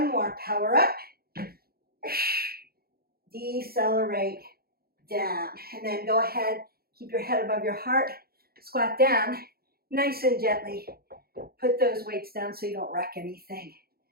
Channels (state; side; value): late; left; 0.44 ms